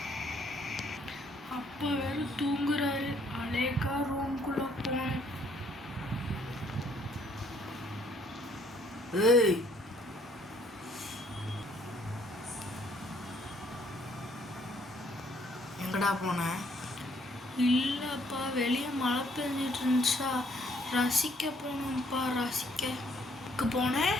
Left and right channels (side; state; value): both; normal; correlation 0.65